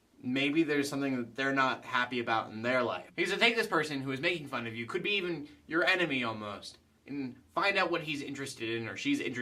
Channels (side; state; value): both; identical; correlation 1.00